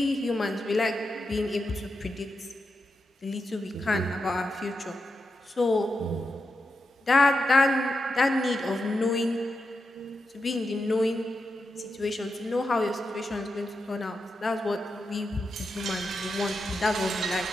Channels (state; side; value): normal; both; correlation 0.87